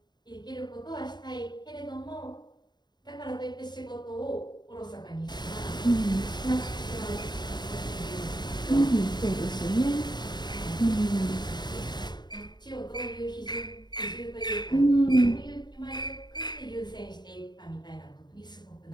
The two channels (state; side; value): late; right; 0.21 ms